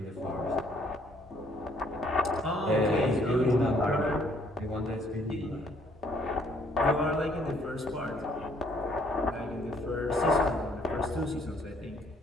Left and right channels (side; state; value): both; normal; correlation 0.64